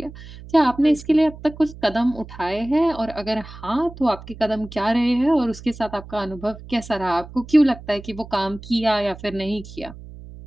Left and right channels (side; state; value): right; noise; hum, 16 dB below the sound